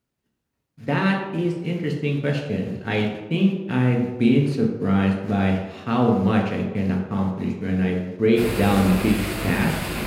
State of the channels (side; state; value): both; identical; correlation 1.00